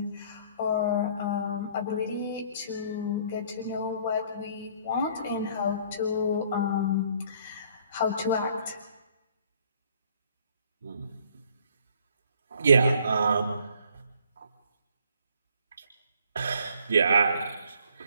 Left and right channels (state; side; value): inverted; both; correlation -0.60